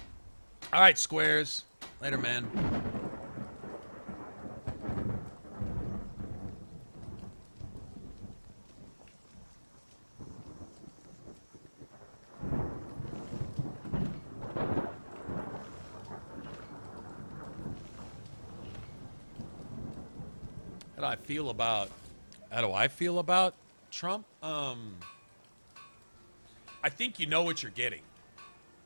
All right, squares. Later, man. How do I feel about Trump? I think you know what you're getting,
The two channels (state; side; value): inverted; both; correlation -1.00